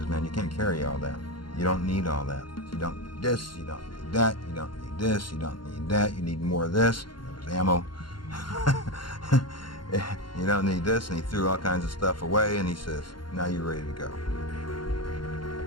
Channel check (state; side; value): late; right; 0.72 ms